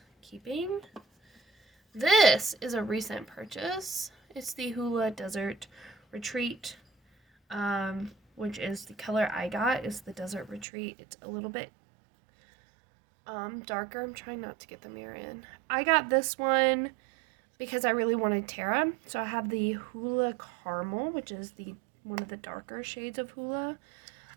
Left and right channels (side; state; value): left; drops out; at 10.7 s